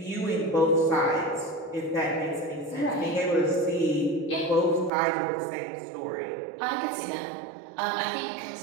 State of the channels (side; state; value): left; drops out; at 4.9 s